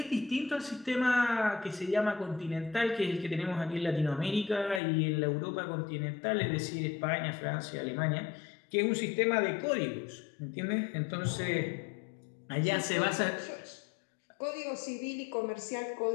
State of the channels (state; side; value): drops out; right; at 4.8 s